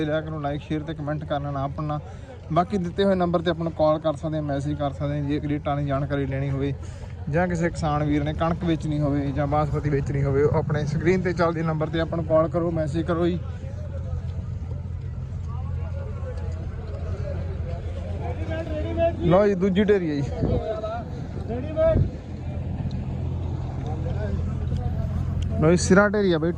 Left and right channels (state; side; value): identical; both; correlation 1.00